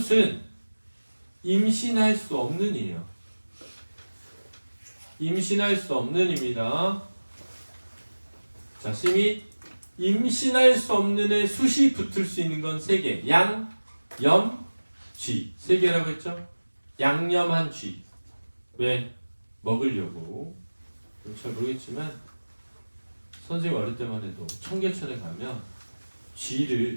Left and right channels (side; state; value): both; inverted; correlation -1.00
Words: 임신할 수 없는 이에요. 임신할 수 없는 입니다. 자, 심이 임신할 수 없는 애 숫이 붙을 수 있는 건 3개. 양, 염, 쥐. 3개라고 했죠? 양념한 쥐. 왜? 먹으려고. 잘 모르겠지만 선생님 어릴 때만 해도 청계천에 가면